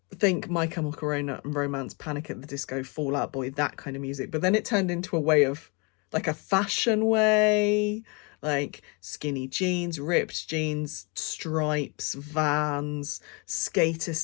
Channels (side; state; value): right; quieter; 31.7 dB